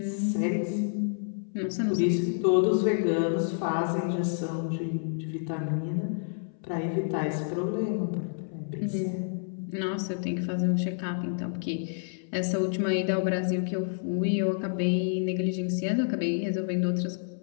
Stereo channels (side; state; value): right; silent; 59 dB below the other